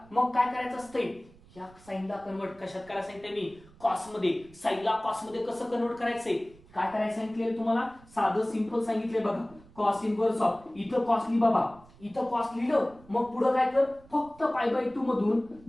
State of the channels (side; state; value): right; noise; rumble, 24 dB below the sound